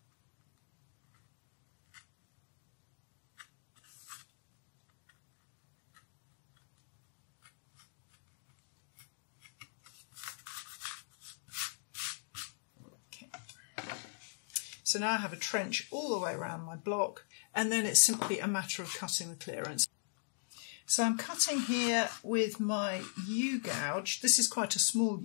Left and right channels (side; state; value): right; silent; digital silence